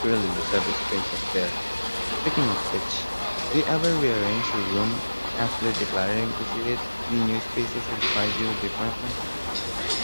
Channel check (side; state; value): both; inverted; correlation -1.00